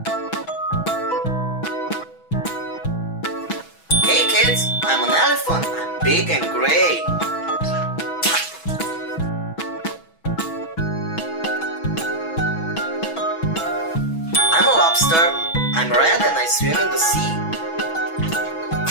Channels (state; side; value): late; right; 6.1 ms